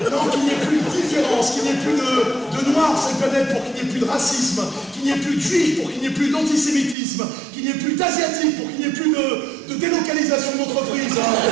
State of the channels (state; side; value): drops out; left; at 7.0 s